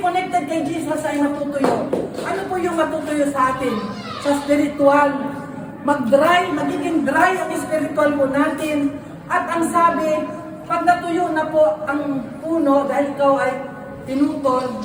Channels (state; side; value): identical; both; correlation 1.00